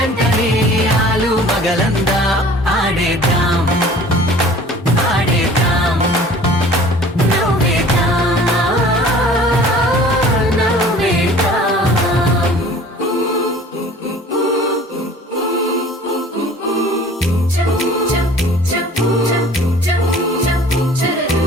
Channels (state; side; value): normal; both; correlation 0.48